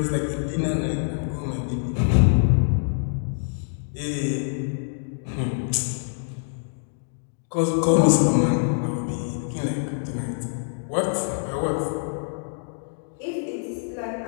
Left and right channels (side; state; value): right; silent; digital silence